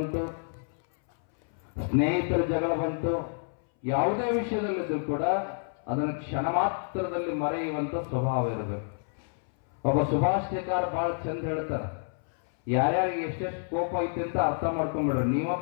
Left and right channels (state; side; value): silent; right; 59 dB below the other